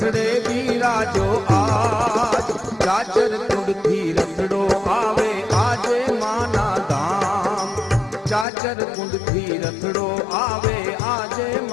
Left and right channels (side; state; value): right; drops out; at 8.5 s